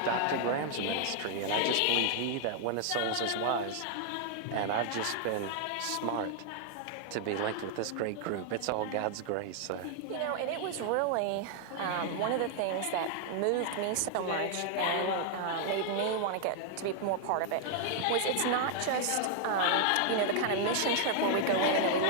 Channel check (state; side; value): different; both; correlation -0.01